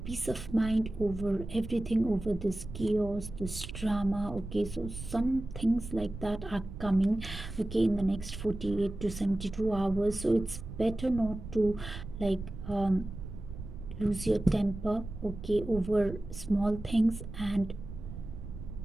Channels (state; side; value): noise; right; rumble, 10 dB below the sound